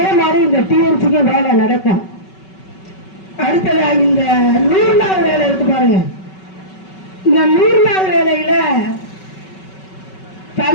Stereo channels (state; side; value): late; right; 5.3 ms